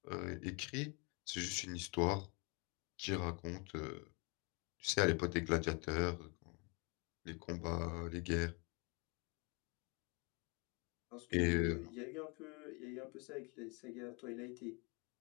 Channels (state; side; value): quieter; right; 31.4 dB